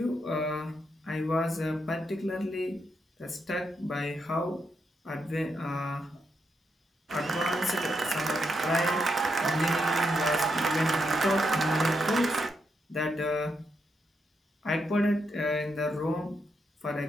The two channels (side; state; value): both; normal; correlation 0.81